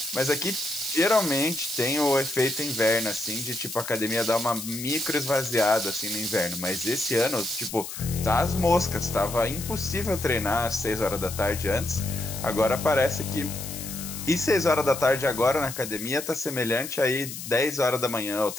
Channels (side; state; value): left; noise; hiss, 9 dB below the sound